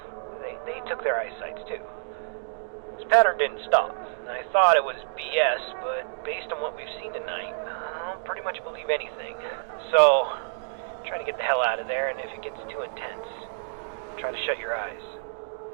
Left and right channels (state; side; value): silent; left; digital silence